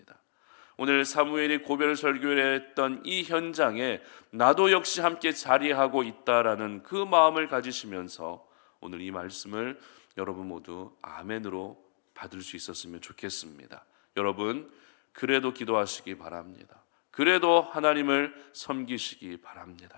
오늘 사무엘이 고별 설교를 했던 이 현장에 나도 역시 함께 자리하고 있다라는 그 마음을 가지시면서 오늘 이 말씀을 여러분 모두 아멘으로 받을 수 있었으면 좋겠습니다. 여러분 그래도 기도하시기 바랍니다. 그래도 하나님을 섬기시기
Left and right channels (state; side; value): silent; right; digital silence